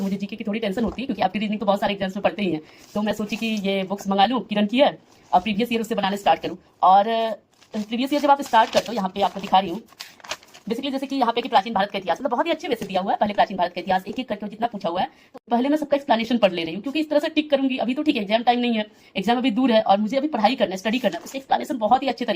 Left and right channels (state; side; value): identical; both; correlation 1.00